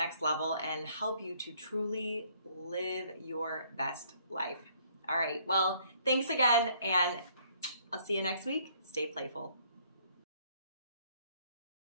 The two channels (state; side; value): inverted; both; correlation -0.64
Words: level and help you to truly live your best life. All right. Well, thanks again, and I'll see you next week. Stay playful.